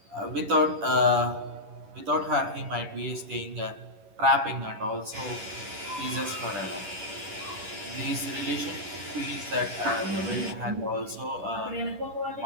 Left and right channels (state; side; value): late; left; 11 ms